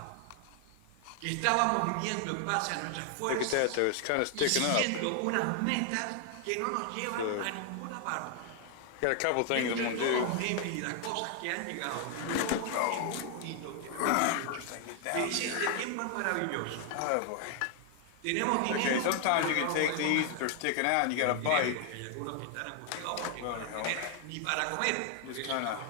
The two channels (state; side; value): different; both; correlation 0.00